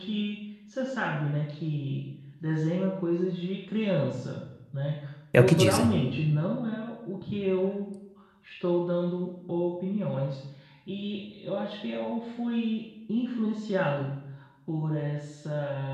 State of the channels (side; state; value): both; identical; correlation 1.00